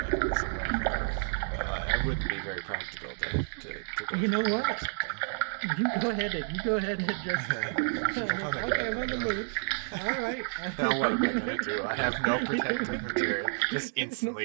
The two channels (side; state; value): left; silent; digital silence